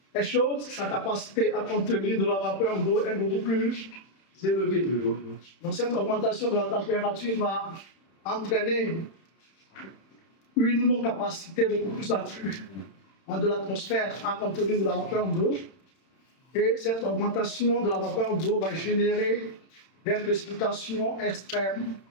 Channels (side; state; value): right; late; 31 ms